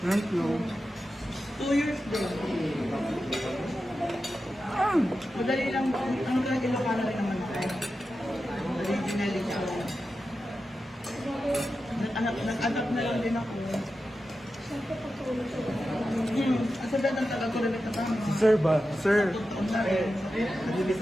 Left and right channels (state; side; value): normal; both; correlation 0.91